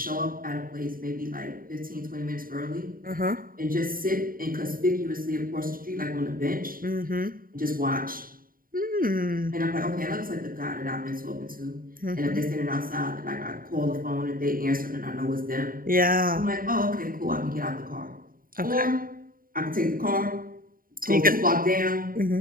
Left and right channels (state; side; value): late; left; 0.41 ms